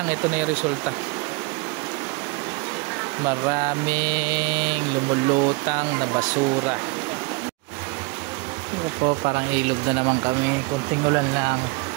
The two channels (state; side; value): quieter; left; 29.0 dB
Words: ito na yung resulta. Maraming lumulutang na basura. Ito po, parang ilog na naman kami. Konting ulan lang.